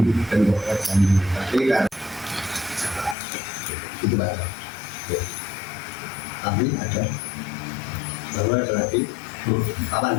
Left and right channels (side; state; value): right; drops out; at 3.2 s